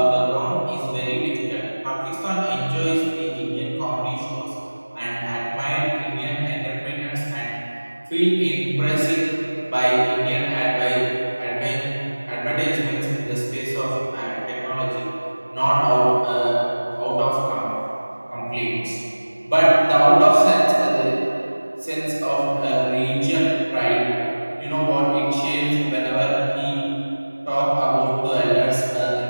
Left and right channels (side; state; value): both; inverted; correlation -1.00